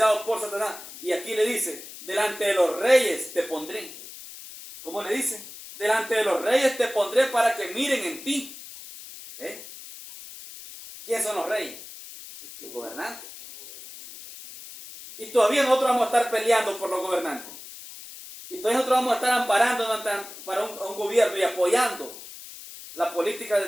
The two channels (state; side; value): noise; left; hiss, 14 dB below the sound